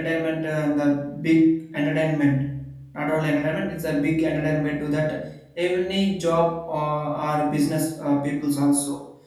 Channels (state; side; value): identical; both; correlation 1.00